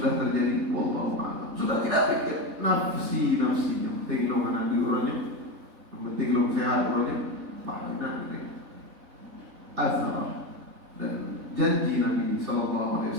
terjadi? Wallahu a'lam. Sudah tidak pikir nafsi-nafsinya, penting lo mana orangnya, penting lo sehat orangnya, benar ini. Azhar dan janji Nabi sallallahu alaihi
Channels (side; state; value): left; late; 3.7 ms